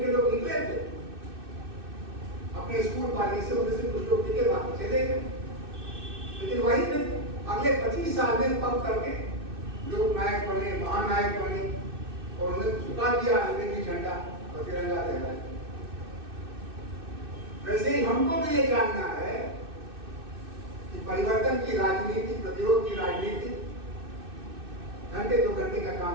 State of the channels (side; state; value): left; late; 2.6 ms